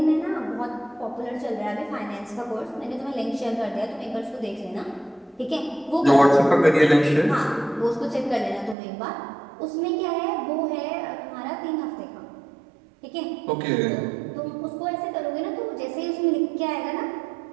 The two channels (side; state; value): left; drops out; at 8.8 s